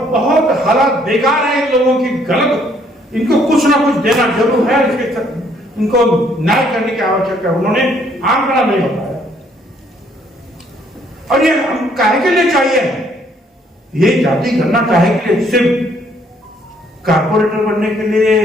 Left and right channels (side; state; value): both; normal; correlation 0.65